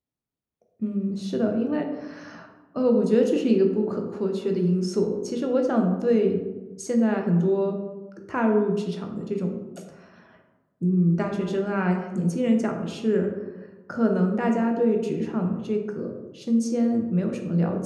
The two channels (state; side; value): identical; both; correlation 1.00